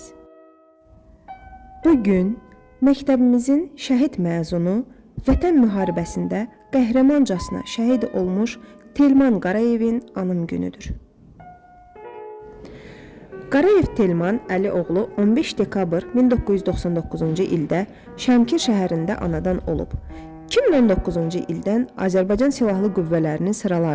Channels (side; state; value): both; identical; correlation 1.00